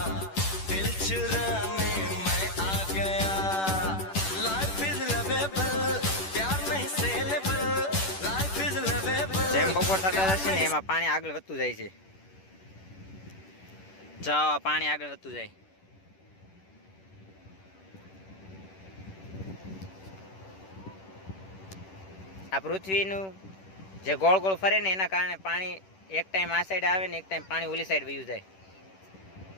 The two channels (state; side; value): late; right; 10 ms